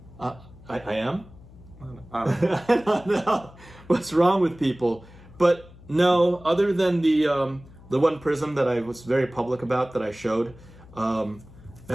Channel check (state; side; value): noise; left; hum, 21 dB below the sound